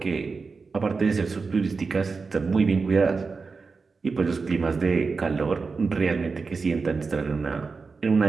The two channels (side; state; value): left; quieter; 4.6 dB